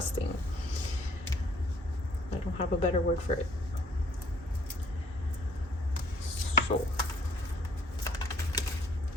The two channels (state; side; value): normal; both; correlation 0.61